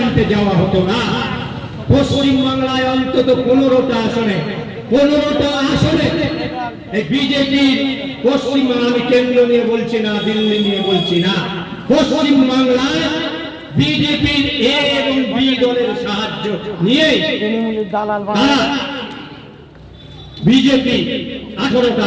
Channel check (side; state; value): both; identical; correlation 1.00